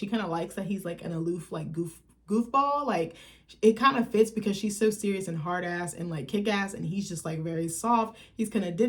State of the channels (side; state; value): both; identical; correlation 1.00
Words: kind of likes that he's like an aloof, like goofball. Like, it kind of fits because she's so serious and hard ass and like kick ass, and he's just like very soft. He's kind of